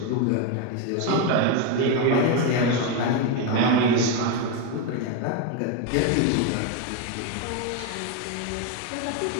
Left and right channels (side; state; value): both; different; correlation 0.03